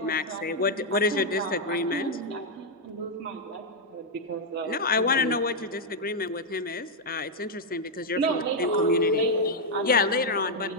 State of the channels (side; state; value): both; normal; correlation -0.01